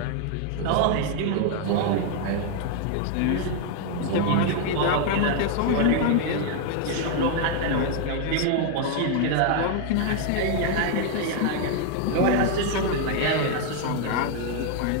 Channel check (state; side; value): different; both; correlation 0.00